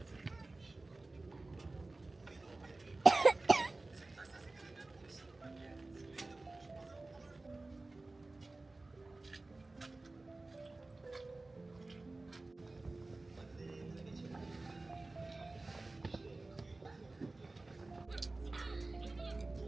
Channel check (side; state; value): left; quieter; 3.1 dB